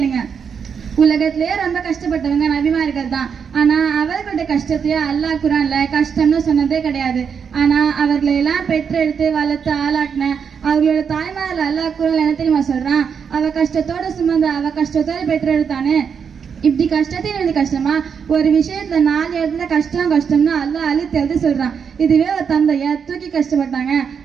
உலகத்திலேயே ரொம்ப கஷ்டப்பட்டவங்க நபிமார்கள் தான். ஆனா அவர்களுடைய கஷ்டத்தையே அல்லாஹ் குர்ஆன்ல கஷ்டம்னு சொன்னதே கிடையாது. ஆனா அவர்களை எல்லாம் பெற்றெடுத்து வளர்த்து ஆளாக்கின அவர்களோட தாய்மார்கள் அல்லாஹ் குர்ஆன்ல என்ன தெரியுமா சொல்றான்? அவ கஷ்டத்தோட சுமந்த அவ கஷ்டத்தோட பெற்றெடுத்தானே. இப்படி கஷ்டத்தையும் எழுதி கஷ்டமா? ஒரு விஷயத்துல 4 இடத்துல கஷ்டம்னு அல்லாஹ் அழுத்தி எழுதி சொல்றான். இதுவே ஒரு தந்தைய தூக்கி கஷ்டப்பட்டாங்க,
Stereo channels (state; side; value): quieter; left; 6.7 dB